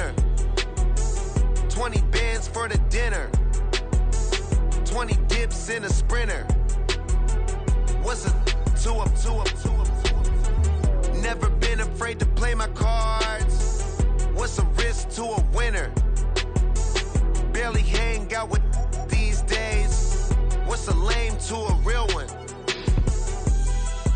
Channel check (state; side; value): identical; both; correlation 1.00